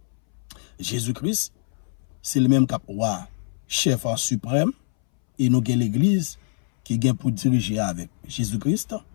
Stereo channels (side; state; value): right; silent; 63 dB below the other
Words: Jésus-Christ, c'est le même cap roi, chef en suprême, et nous avons l'église qui vient pour diriger avec Jésus-Christ.